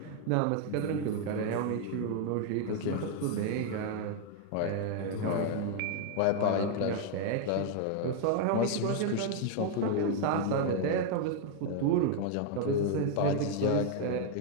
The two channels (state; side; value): different; both; correlation 0.00